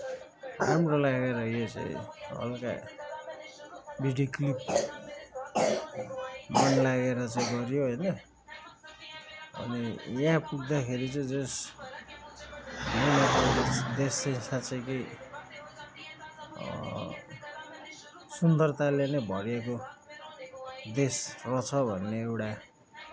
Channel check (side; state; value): both; identical; correlation 1.00